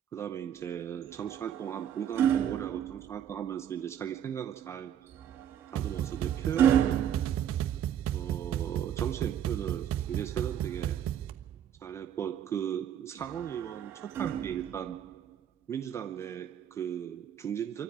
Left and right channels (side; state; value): left; quieter; 9.8 dB